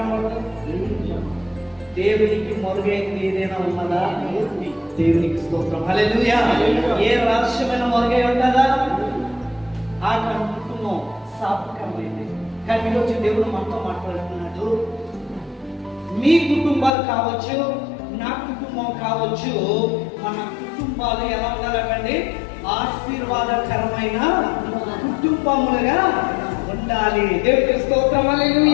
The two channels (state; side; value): drops out; right; at 16.9 s